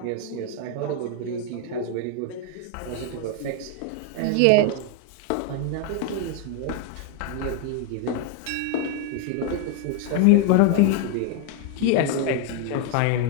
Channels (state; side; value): different; both; correlation 0.01